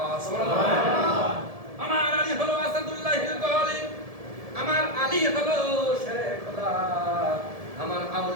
সুবহানাল্লাহ। আমার আলী হলো আসাদুল্লাহিল গালিব, আমার আলী হলো শেরে খোদা। আমার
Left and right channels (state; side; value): late; left; 1.7 ms